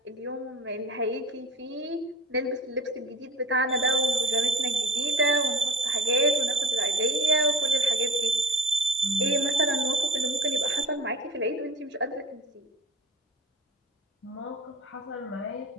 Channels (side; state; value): both; normal; correlation 0.38